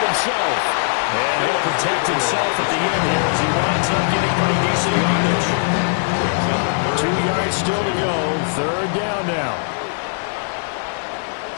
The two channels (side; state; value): right; silent; 57 dB below the other